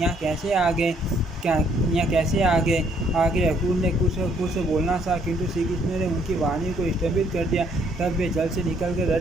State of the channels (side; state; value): both; normal; correlation 0.67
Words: कैसे आ गए। अक्रूर ने कुछ बोलना था, किंतु श्री कृष्ण ने उनकी वाणी को स्थगित कर दिया। तब वे जल से निकलकर